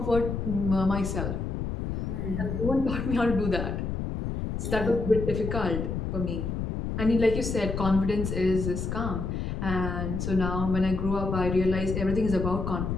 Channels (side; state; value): left; noise; rumble, 3 dB below the sound